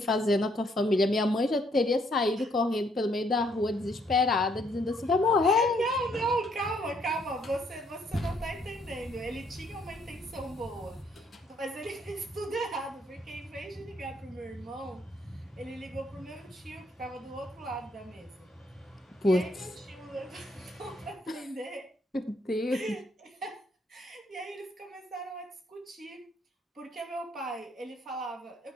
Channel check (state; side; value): normal; both; correlation 0.69